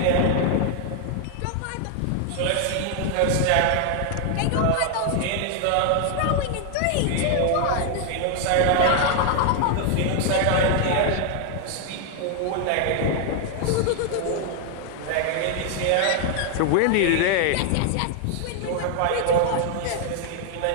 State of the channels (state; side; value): different; both; correlation 0.00